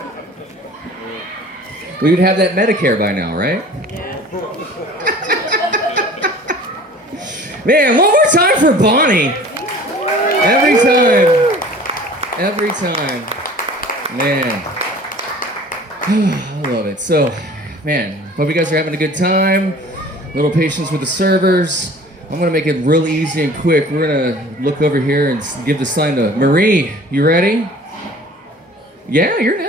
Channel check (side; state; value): both; normal; correlation 0.46